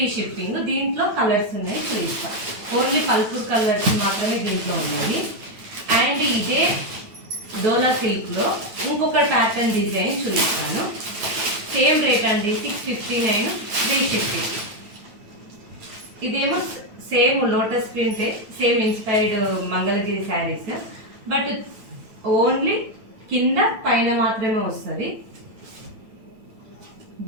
షిప్పింగ్. దీంట్లో కలర్స్ ఉన్నాయి, చూపిస్తాం. ఓన్లీ పల్పూర్ కలర్స్ మాత్రమే దీంట్లో ఉన్నాయి. అండ్ ఇదే డోలా సిల్క్లో ఇంకొక ప్యాటర్న్ డిజైన్ చూపిస్తాను. సేమ్ రేట్ అండి, 659 ఫ్రీ షిప్పింగ్. ఇదేమో సేమ్ లోటస్ ప్రింటే, same inspired Mangalagiri saris, but only కింద పైన మాత్రమే వస్తుంది.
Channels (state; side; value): late; left; 9.1 ms